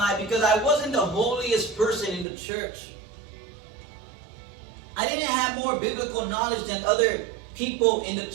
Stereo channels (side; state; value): left; drops out; at 2.2 s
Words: because I wasn't the holiest person in the church. I didn't have more biblical knowledge than other people in the